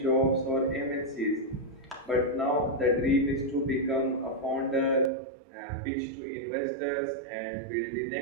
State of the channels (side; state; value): left; drops out; at 5.1 s